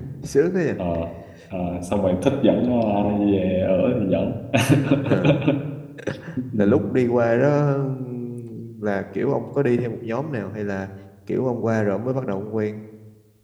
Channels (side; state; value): both; identical; correlation 1.00